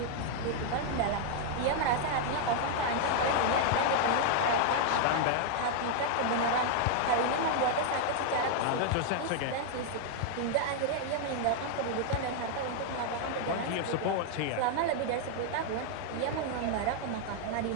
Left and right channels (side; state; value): both; different; correlation 0.00